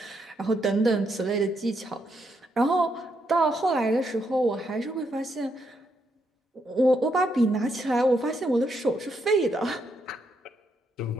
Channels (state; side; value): normal; both; correlation 0.78